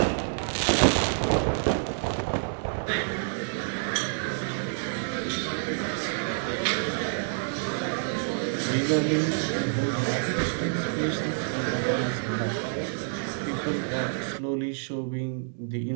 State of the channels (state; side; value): silent; left; digital silence